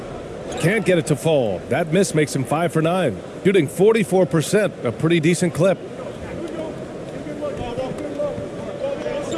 Can't get it to fall. That miss makes him 5 for 9. Shooting 44%, a pretty decent clip.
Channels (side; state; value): both; identical; correlation 1.00